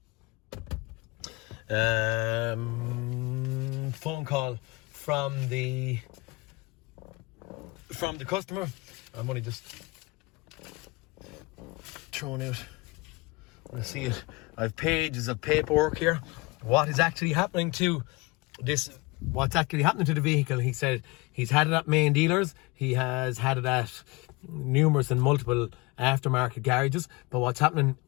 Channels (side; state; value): right; quieter; 25.0 dB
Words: phone call from the customer. I'm only just throwing out when I see it. I have pages of paperwork here. What is actually happening to this? What's actually happening to the vehicle? He said he's had it at main dealers. He has had it at numerous and multiple aftermarket garages. But what's happening